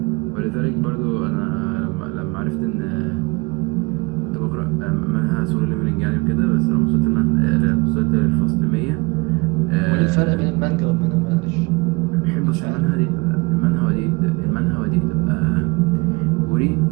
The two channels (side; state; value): left; quieter; 25.8 dB